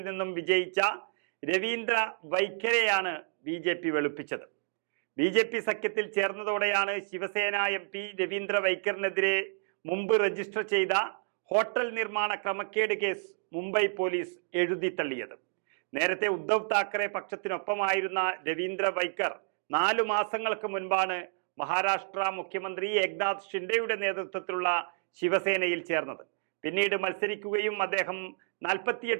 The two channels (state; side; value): silent; left; digital silence